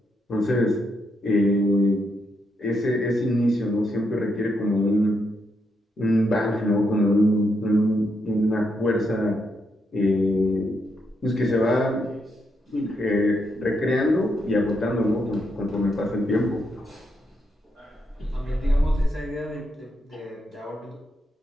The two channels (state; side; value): normal; both; correlation 0.80